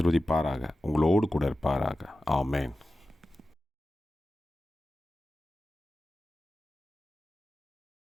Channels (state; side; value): normal; both; correlation 0.94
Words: உங்களோடு கூட இருப்பாராக. ஆமென்.